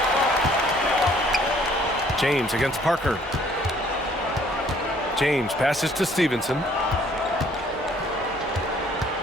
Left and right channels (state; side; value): normal; both; correlation 0.60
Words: James against Parker. James passes to Stevenson.